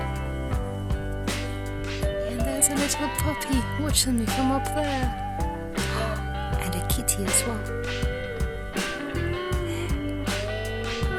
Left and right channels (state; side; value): identical; both; correlation 1.00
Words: There's a little puppy watching me from up there. And a kitty as well.